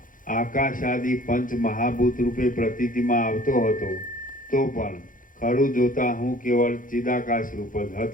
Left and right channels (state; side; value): late; right; 0.39 ms